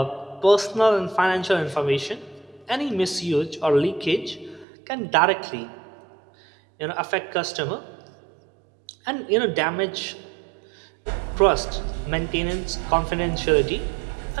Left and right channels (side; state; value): left; drops out; at 4.7 s